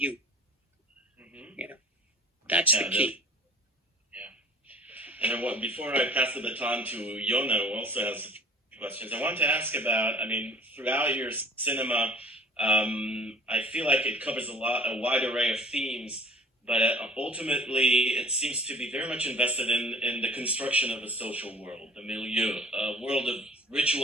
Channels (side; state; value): both; normal; correlation 0.47